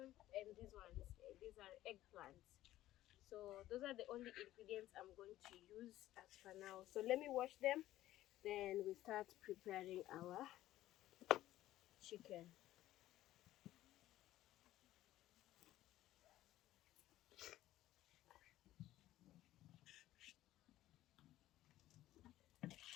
and these are eggplants. So those are the only ingredients I'm going to use as for now. So let me wash them, then we start preparing our chicken.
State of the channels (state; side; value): quieter; right; 14.6 dB